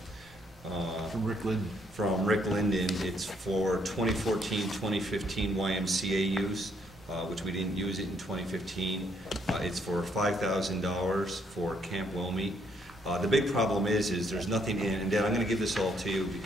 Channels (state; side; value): normal; both; correlation 0.70